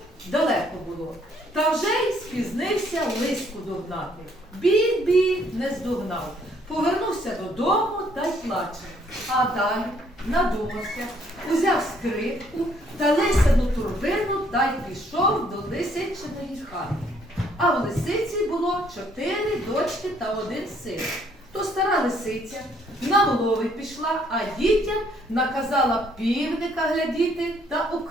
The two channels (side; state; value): both; normal; correlation 0.66